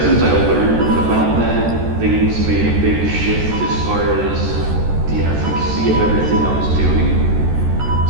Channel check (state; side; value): late; left; 14 ms